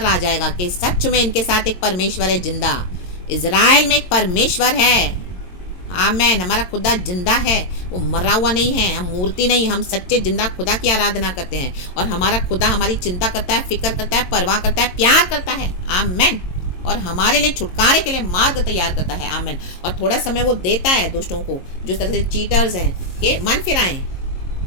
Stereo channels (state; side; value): late; right; 22 ms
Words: आ जाएगा कि सच में इनके साथ एक परमेश्वर है जिंदा। इजराइल में एक परमेश्वर है। आमेन। हमारा खुदा जिंदा है, वो मरा हुआ नहीं है। हम मूर्ति नहीं, हम सच्चे जिंदा खुदा की आराधना करते हैं। और हमारा खुदा हमारी चिंता करता है, फिक्र करता है, परवाह करता है, प्यार करता है। आमेन। और हमारे लिए छुटकारे के लिए मार्ग तैयार करता है। आमेन। और थोड़ा समय वो देता है दोस्तों को, जो तरह से चीटर्स हैं, कि मन फिराएं।